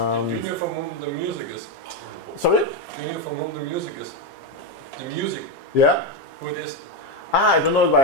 you from whom the music is? Sorry? Can you from whom the music is? The music. Yeah. Who it is? I don't know it by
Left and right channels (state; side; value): late; left; 1.5 ms